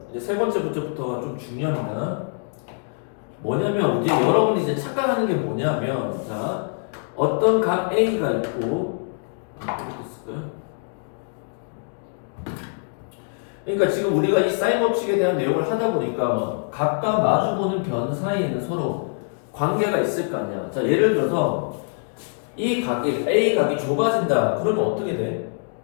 이제 세 번째 문제부터가 좀 중요합니다. 뭐냐면 이제 여러분이 이제 착각하는 게 뭐냐면, 자, 어떤 각 A가 있고, 이렇게 쓸까요? 그러니까 지금 우리가 이 사인 법칙에 대한 내용을 하다 보니까 각과 마주보는 변 사이에는 서로 관계가 있을 거 아니야. 자, 예를 들어서 이 각이 A 각이 좁아진다. 그러면 어떻게 돼?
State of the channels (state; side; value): silent; right; 63 dB below the other